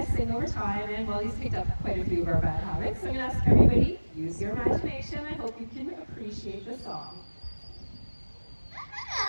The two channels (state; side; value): inverted; both; correlation -1.00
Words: sing over time, and well, he's picked up quite a few of our bad habits. So I'm going to ask everybody, use your imagination. I hope you can appreciate the song.